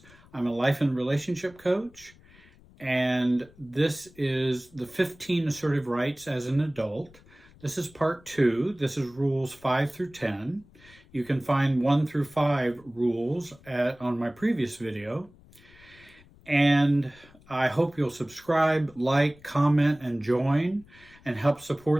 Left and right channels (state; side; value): noise; left; rumble, 26 dB below the sound